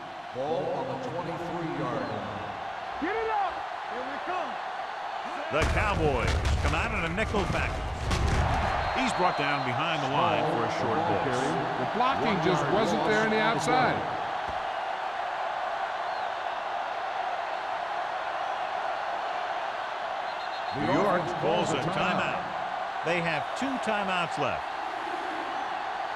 Ball on the 23-yard line. Get it up. Here we come. The Cowboys come out in a nickel package. He's brought down behind the line for a short ball. The blocking just wasn't there on the outside. New York calls a timeout. They have 2 timeouts left.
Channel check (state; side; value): identical; both; correlation 1.00